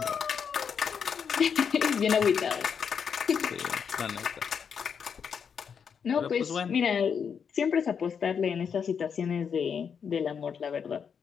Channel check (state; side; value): quieter; right; 6.9 dB